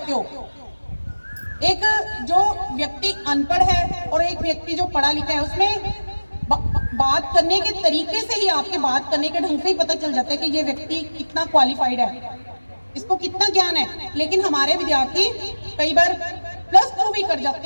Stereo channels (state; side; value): inverted; both; correlation -1.00